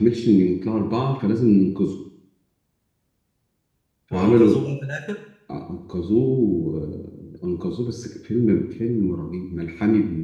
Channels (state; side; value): identical; both; correlation 1.00